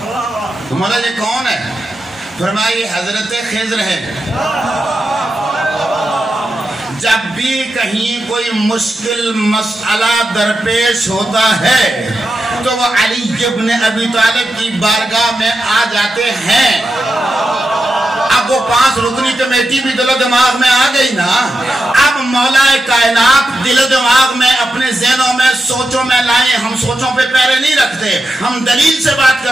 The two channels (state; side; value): normal; both; correlation 0.88